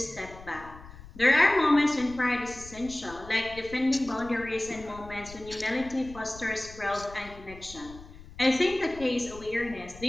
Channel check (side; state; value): left; noise; rumble, 17 dB below the sound